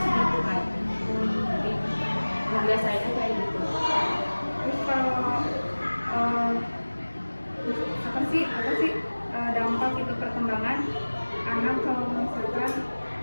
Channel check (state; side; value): inverted; both; correlation -1.00